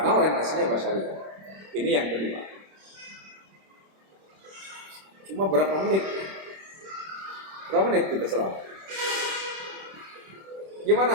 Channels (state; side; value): late; left; 26 ms